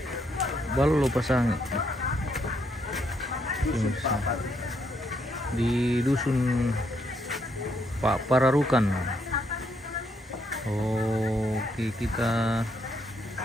Ballo Pasang pemirsa, di dusun Pak Pararukan. Oke, kita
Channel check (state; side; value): normal; both; correlation 0.75